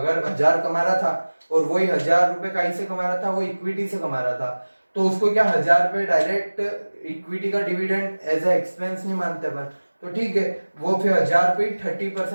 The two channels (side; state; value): both; inverted; correlation -1.00